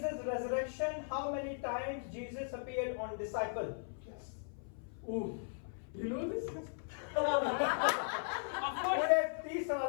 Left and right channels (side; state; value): right; silent; 52 dB below the other